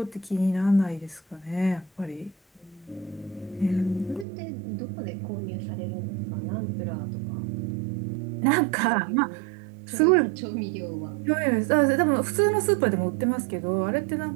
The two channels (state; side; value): drops out; left; at 4.2 s